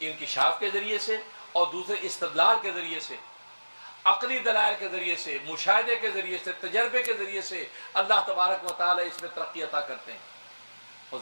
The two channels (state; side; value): inverted; both; correlation -1.00